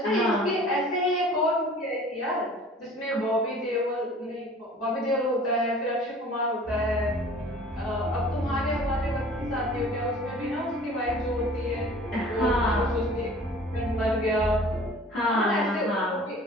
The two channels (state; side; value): normal; both; correlation 0.47